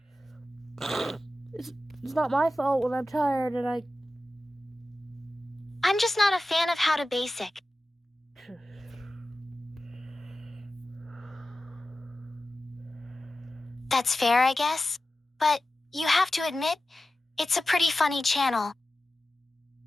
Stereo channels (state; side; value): normal; both; correlation 0.94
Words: It's not my fault when I'm tired and I'm just not a fan of How to Basic. That's fair, I guess. But you have to admit, it's a pretty funny channel.